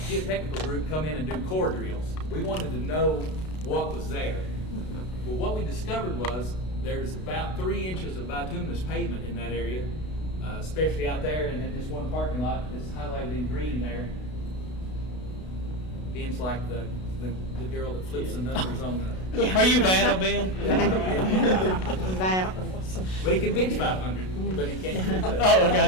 geotechnical group come in and do core drills. We wanted to know what was there. Well, what we discovered was there's about 3 inches of bituminous pavement in that area, especially out there, and in this one parking lot that's highlighted in green there. Ben's like the girl that flips the numbers on the. Are you Vanna, Ben? But he can bench 500, but he can't. Oh, I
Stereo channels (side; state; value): right; late; 32 ms